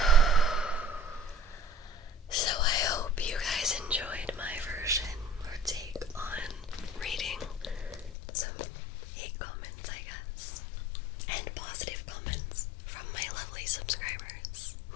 So I hope you guys enjoyed my version or take on reading some hate comments, I guess, and positive comments from my lovely subscribers.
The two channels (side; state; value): right; drops out; at 8.1 s